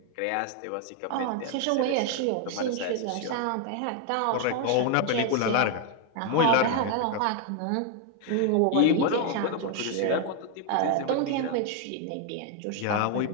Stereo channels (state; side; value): different; both; correlation 0.00